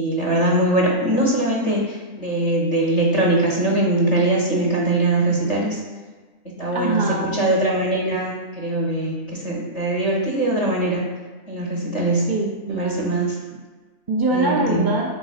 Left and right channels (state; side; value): late; right; 3.3 ms